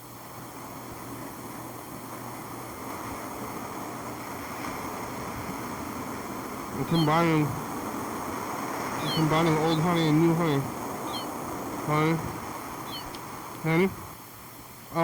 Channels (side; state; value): both; identical; correlation 1.00